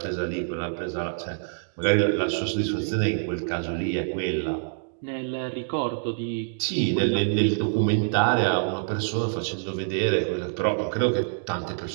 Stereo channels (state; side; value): silent; left; digital silence